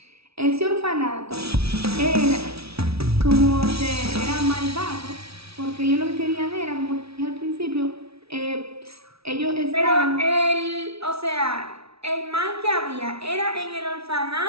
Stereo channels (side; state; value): left; late; 0.77 ms